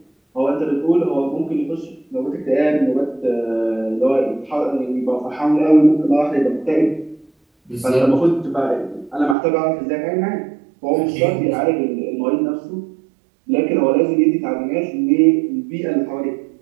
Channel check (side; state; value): left; drops out; at 9.3 s